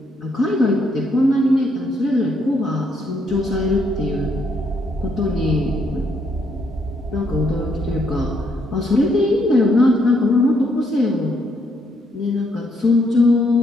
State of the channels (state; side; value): normal; both; correlation 0.73